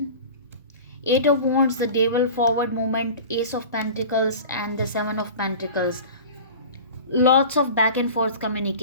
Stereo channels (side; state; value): both; inverted; correlation -0.37